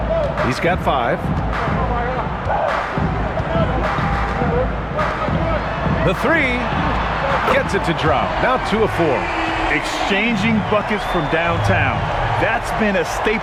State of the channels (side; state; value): both; identical; correlation 1.00